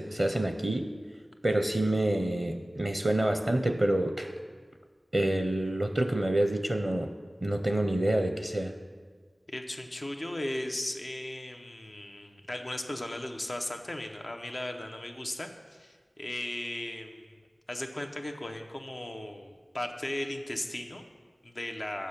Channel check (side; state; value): both; normal; correlation 0.96